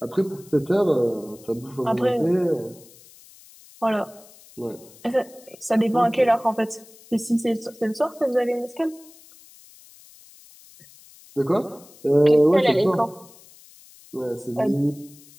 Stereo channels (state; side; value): noise; left; hiss, 24 dB below the sound